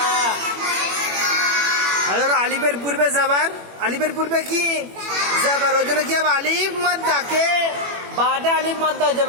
আলিফের পূর্বে জবর, আলিফের পূর্বে কি জবর, ওই জন্য কি হবে? আলিফ মাদ্দাকে বাটা আলিফ মাদ্দা হয়ে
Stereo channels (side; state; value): left; late; 21 ms